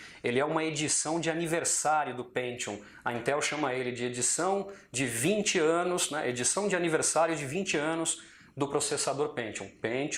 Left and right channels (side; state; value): both; identical; correlation 1.00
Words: Ele é uma edição de aniversário do Pentium. A Intel chama ele de edição de 20 anos, né? Edição de aniversário de 20 anos do processador